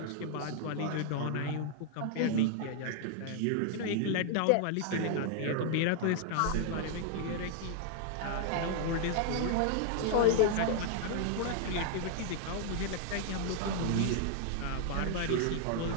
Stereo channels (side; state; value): both; different; correlation 0.00